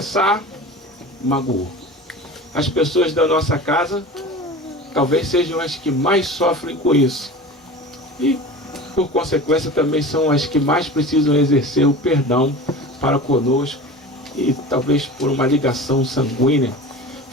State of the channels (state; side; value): normal; both; correlation 0.35